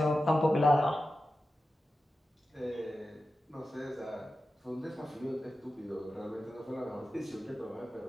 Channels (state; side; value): normal; both; correlation 0.93